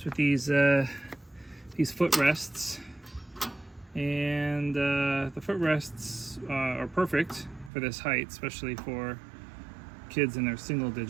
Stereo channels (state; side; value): drops out; left; at 7.7 s